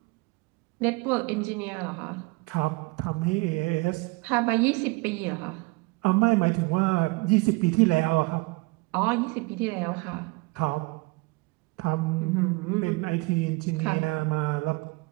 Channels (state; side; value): quieter; left; 25.9 dB